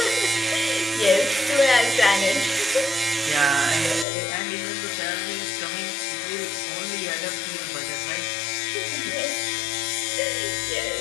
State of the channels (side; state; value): right; drops out; at 4.0 s